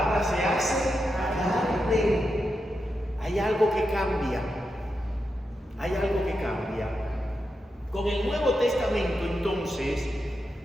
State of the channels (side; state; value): both; normal; correlation 0.87